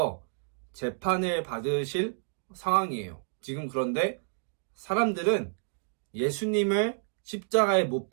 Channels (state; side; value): silent; left; digital silence